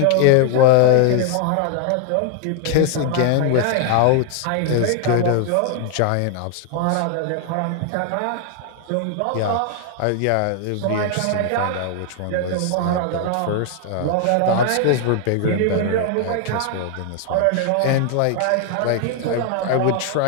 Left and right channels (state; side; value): different; both; correlation 0.00